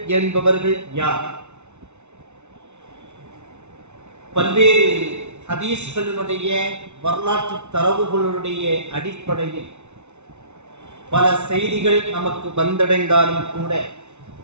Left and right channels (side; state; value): left; late; 0.82 ms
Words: என்பவர்கள் யார்? பல்வேறு ஹதீஸ்களினுடைய வரலாற்று தரவுகளுடைய அடிப்படையில் பல செய்திகள் நமக்கு வந்தடைந்தாலும் கூட,